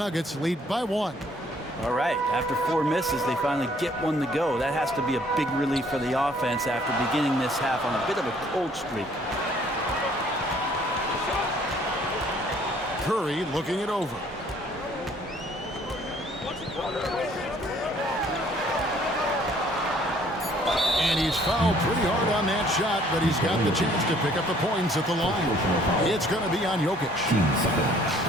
lead by 1. All right, after 4 misses, they finally get one to go. That has to be a big relief for the offense after beginning this half on a bit of a cold streak. Curry looking it over. And he's fouled pretty hard on that shot, but he's got the chance to pick up the points at the line. It's going to be on Jokic.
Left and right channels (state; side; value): normal; both; correlation 0.60